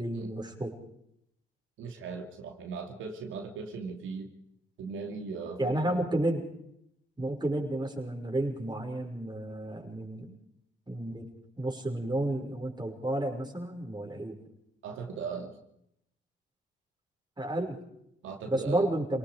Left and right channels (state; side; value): normal; both; correlation 0.77